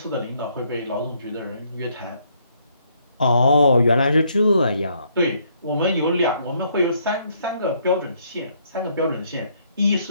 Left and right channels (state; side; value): inverted; both; correlation -0.70